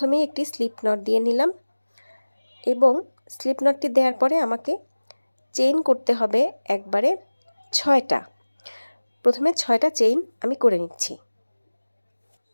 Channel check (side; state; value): both; inverted; correlation -1.00